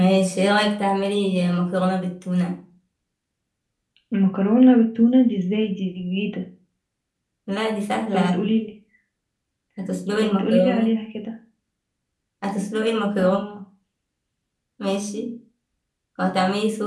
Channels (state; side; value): identical; both; correlation 1.00